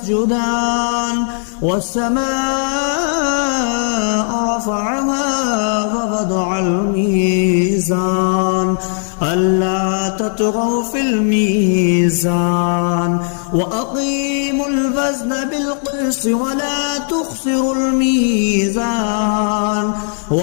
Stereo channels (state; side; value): silent; right; 69 dB below the other